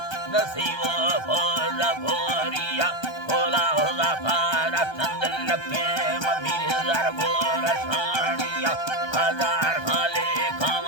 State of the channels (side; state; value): right; late; 1.3 ms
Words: नसीबो फोर भोरिया होला होला पारा चंदन लखे ममीर हजार गोरा सानिया हजार खाले